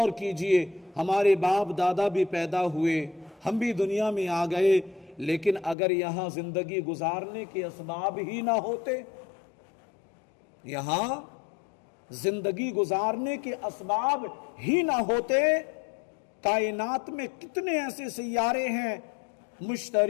کیجئے، ہمارے باپ دادا بھی پیدا ہوئے، ہم بھی دنیا میں آ گئے، لیکن اگر یہاں زندگی گزارنے کے اسباب ہی نہ ہوتے، یہاں زندگی گزارنے کے اسباب ہی نہ ہوتے، کائنات میں کتنے ایسے سیارے ہیں،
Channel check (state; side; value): drops out; right; at 5.8 s